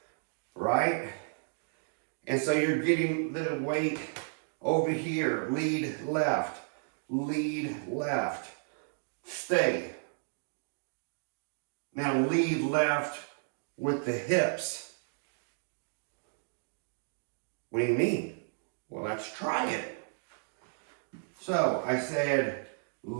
right? And so you're getting the weight over here. Lead left, stay. Now lead left with the hips. What do you mean? Well, let's try it. So I said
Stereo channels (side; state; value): left; silent; digital silence